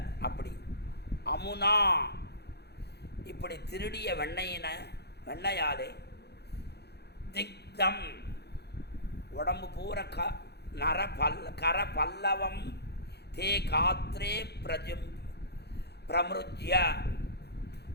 அப்படி அமுனா, இப்படி திருடிய வெண்ணையாலே திக்தம், உடம்பு பூரா கர பல்லவம் தே காத்ரே பிரமிருஜ்ய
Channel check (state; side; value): late; right; 0.48 ms